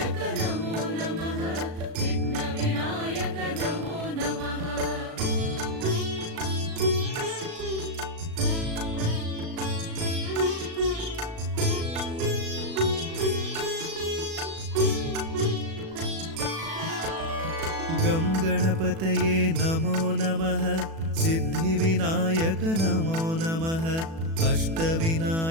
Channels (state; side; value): late; left; 37 ms